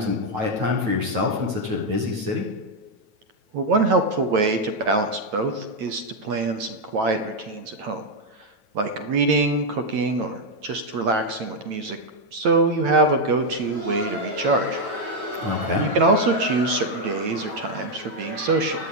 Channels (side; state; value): left; late; 9.2 ms